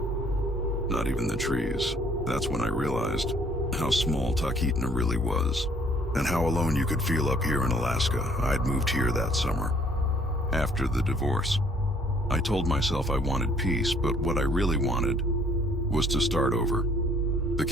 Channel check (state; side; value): normal; both; correlation 0.60